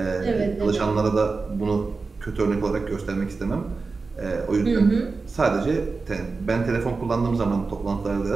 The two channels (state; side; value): quieter; left; 4.2 dB